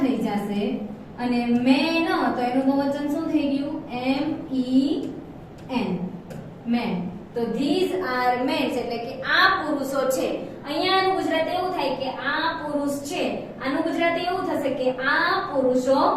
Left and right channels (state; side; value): identical; both; correlation 1.00